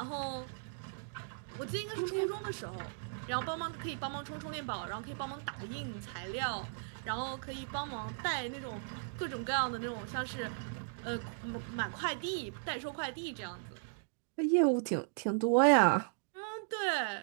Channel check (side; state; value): left; silent; digital silence